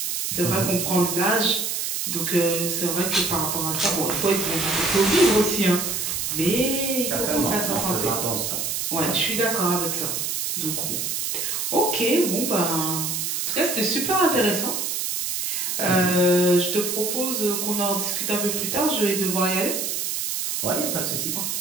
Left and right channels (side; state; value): right; noise; hiss, 1 dB below the sound